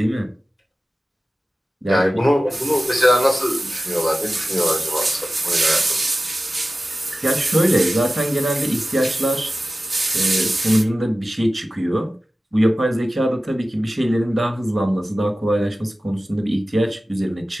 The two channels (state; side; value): normal; both; correlation 0.96